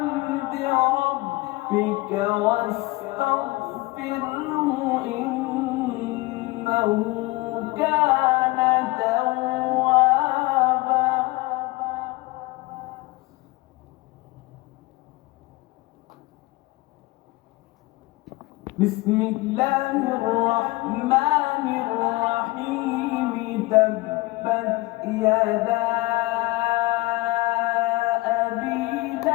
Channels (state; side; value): quieter; right; 21.5 dB